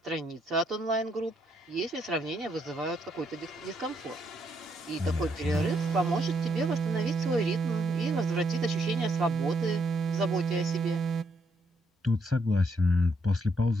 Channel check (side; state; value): both; normal; correlation 0.75